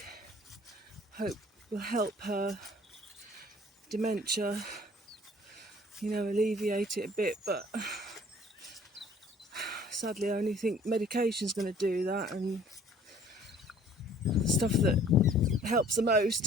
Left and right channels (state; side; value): normal; both; correlation 0.54